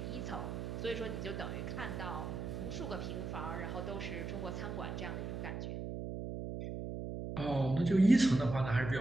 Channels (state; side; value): noise; right; hum, 5 dB below the sound